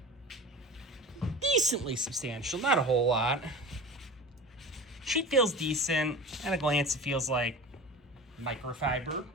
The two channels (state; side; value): normal; both; correlation 0.33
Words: Decently substantial, not a whole lot. Sheet feels decent. At a glance, it feels like microfiber,